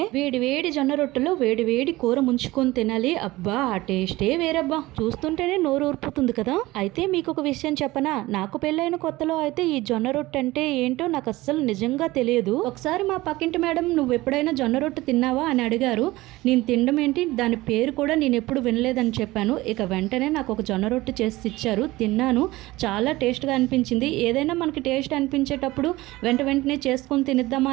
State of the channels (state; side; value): quieter; left; 19.0 dB